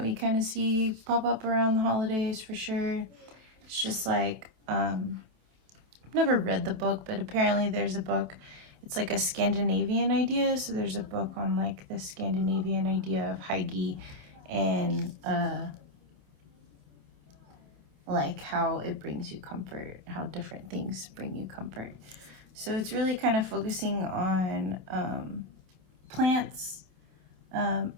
we kind of see pop up around the holidays for sure. It's just like, I've never read the book, but apparently there's a book. It's like a Scandinavian idea. So there's a book on like the Scandinavian idea of Hygge and like how it brings you comfort, how different things bring you comfort. So it's really kind of focusing on plants and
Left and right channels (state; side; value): late; left; 27 ms